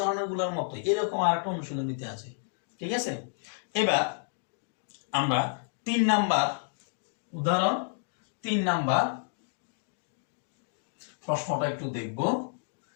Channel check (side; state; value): right; silent; digital silence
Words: মতো এরকম আরেকটা অনুশীলনীতে আছে। ঠিক আছে, এবার আমরা 3 নাম্বার উদাহরণ, 3 নাম্বার প্রশ্নটা একটু দেখব।